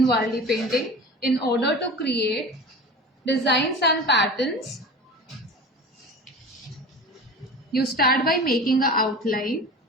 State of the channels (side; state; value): both; normal; correlation 0.35